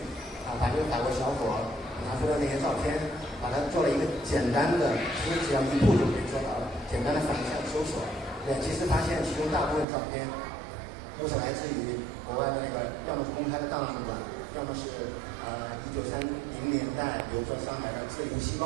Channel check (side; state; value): left; drops out; at 9.9 s